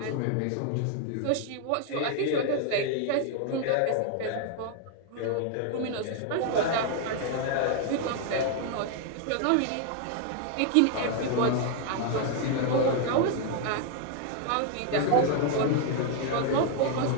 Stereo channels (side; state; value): both; different; correlation 0.00